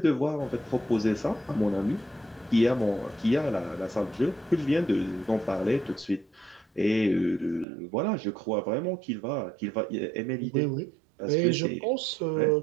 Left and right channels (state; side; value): drops out; left; at 7.7 s